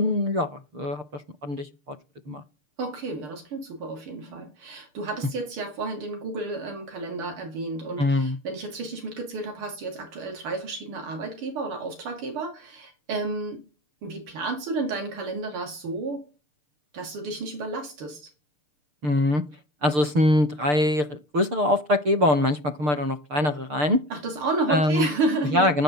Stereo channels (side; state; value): left; late; 6.7 ms